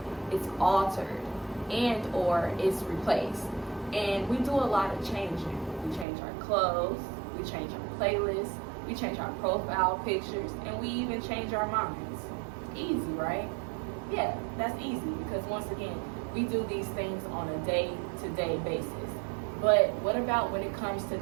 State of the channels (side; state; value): left; drops out; at 6.1 s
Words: it's altered, and or it's replaced. And we do a lot of changing. We change our clothes, we change our playlists, we change our profile pictures, and we even change our minds. Easy, right? Yeah, that's easy because once again, we do these things on a day-to-day basis. But what about when it comes to